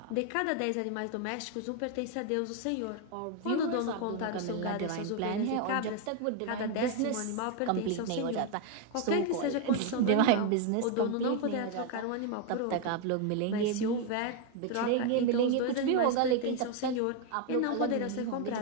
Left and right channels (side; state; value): both; different; correlation 0.01